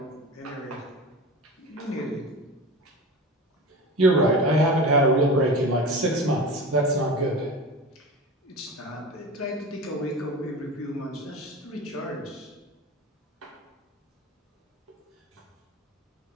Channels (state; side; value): normal; both; correlation 0.31